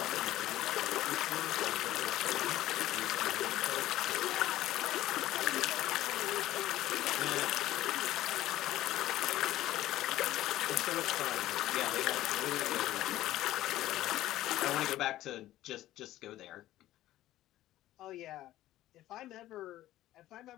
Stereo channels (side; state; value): right; quieter; 14.7 dB